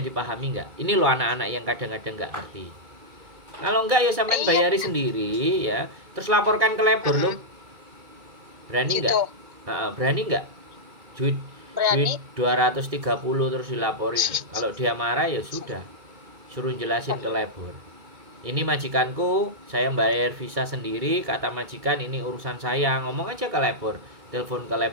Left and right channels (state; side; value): late; left; 2.3 ms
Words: nggak? Ini loh anak-anak yang kadang-kadang nggak ngerti. Kalau enggak ya sampean iya bayari sendiri ya. Terus laporkan ke labor loh. Berani nggak? gitu, Berani nggak? Duit duit berani. 230 terus dilaporin. Kalau dia marah ya sudah. Suruh jelasin ke labor. Ini majikanku, saya bayar visa sendiri, kata majikan ini urusan saya. Ngomong aja ke labor, telepon ke